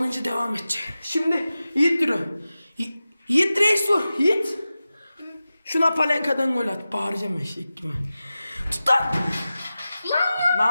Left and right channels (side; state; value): both; inverted; correlation -0.94